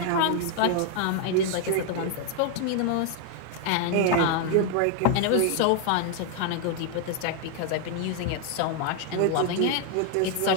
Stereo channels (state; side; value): different; both; correlation 0.00